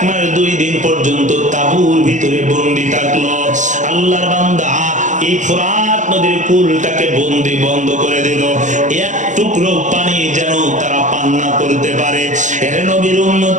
মাস 2 দিন পর্যন্ত তাঁবুর ভিতরে বন্দী থাকলো। আল্লাহর বান্দা এই ফোরাত নদীর কুলটাকে বন্ধ করে দিল, এক টুকরো পানি যেন তারা পান না করতে পারে। এর নবীর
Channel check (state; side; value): late; left; 0.36 ms